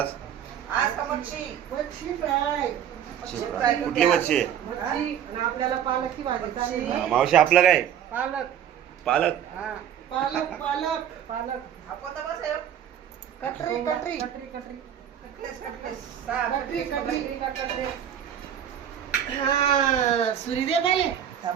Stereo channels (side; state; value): left; quieter; 9.5 dB